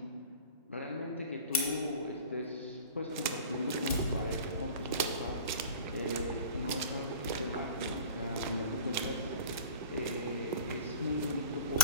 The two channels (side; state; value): both; inverted; correlation -0.41